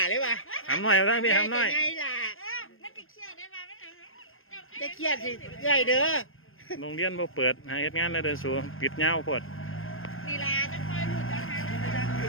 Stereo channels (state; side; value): late; right; 0.60 ms